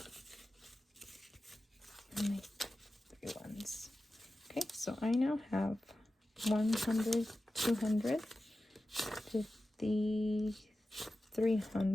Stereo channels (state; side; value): normal; both; correlation 0.94